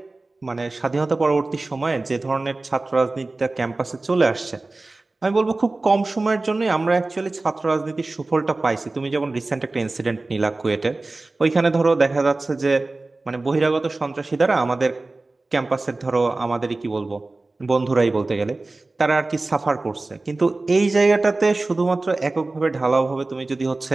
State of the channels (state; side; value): quieter; left; 3.2 dB